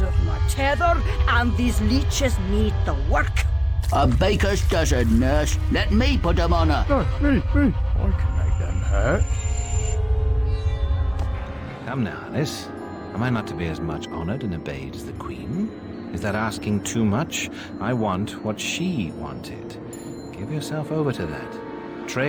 of my tether, and these leeches need the work. A baker's dozen, nurse. Let me put them on her. No, me. I can make them hurt. Come now, Alice. Am I not to be as much honoured and obeyed as the Queen? Is that asking too much? I want what she wanted. Give yourself over to that.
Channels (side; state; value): both; identical; correlation 1.00